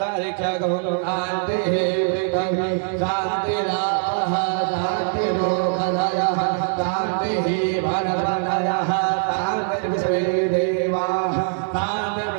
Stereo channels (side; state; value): left; silent; 64 dB below the other